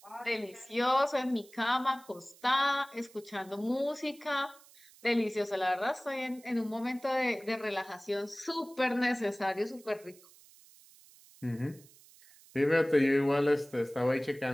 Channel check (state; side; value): noise; right; hiss, 24 dB below the sound